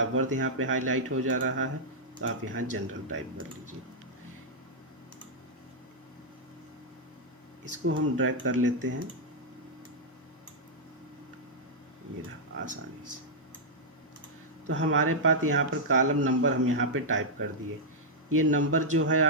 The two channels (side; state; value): both; normal; correlation -0.07